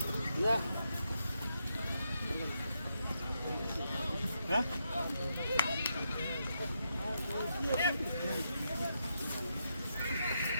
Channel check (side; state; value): both; inverted; correlation -0.82